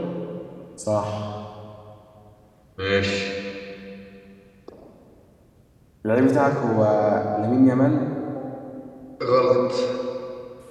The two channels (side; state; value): both; identical; correlation 1.00